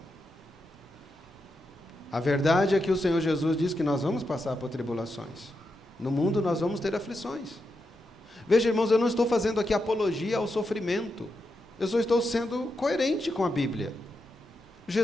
A verdade é que o Senhor Jesus diz que nós vamos passar por tribulações. No mundo nós vamos ter aflições. Veja, irmãos, eu não estou fazendo aqui apologia ao sofrimento. Eu só estou sendo coerente com a Bíblia.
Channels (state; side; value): normal; both; correlation 0.86